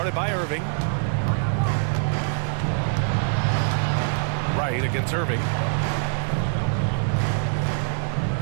by Irving. Wright against Irving.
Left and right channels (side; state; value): left; silent; digital silence